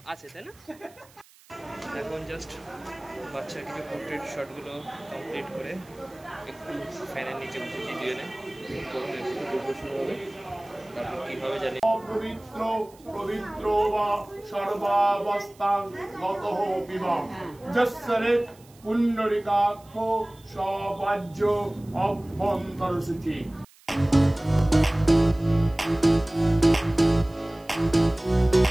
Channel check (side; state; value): right; noise; hiss, 27 dB below the sound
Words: তাই না। এখন জাস্ট বাচ্চার কিছু পোর্ট্রেট শটগুলো কমপ্লিট করে একটু ফ্যানের নিচে বসেছি দুজনে, হবে তারপর কী হবে জানি। পবিত্র পবিত্র বা সর্বাবস্থান গতঃ বিবাহ যস্যরে পুণ্ডরিকাক্ষ সবাজ্য অভ্যন্তরসূচি।